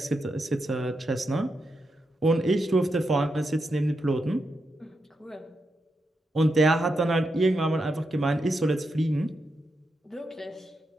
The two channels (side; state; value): both; normal; correlation 0.85